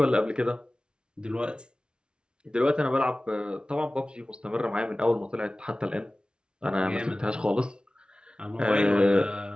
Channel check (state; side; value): late; left; 0.055 ms